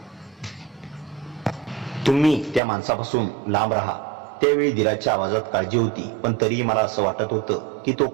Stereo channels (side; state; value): left; drops out; at 2.6 s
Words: तुम्ही त्या माणसापासून लांब राहा. त्यावेळी दिलाच्या आवाजात काळजी होती, पण तरीही मला असं वाटत होतं की तो